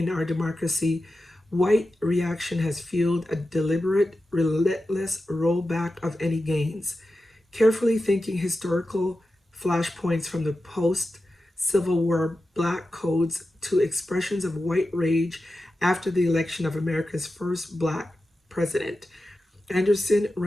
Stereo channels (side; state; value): both; normal; correlation 0.92